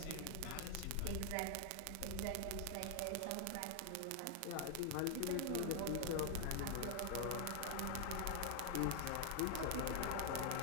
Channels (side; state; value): both; different; correlation 0.00